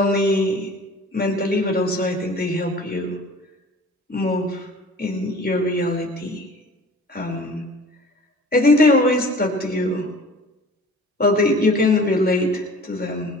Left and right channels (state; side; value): normal; both; correlation 0.45